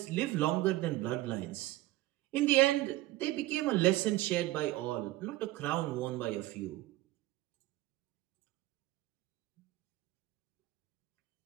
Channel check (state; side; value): quieter; left; 17.3 dB